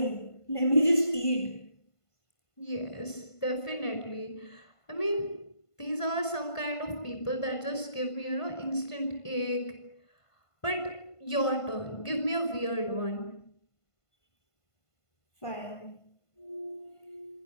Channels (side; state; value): right; late; 1.5 ms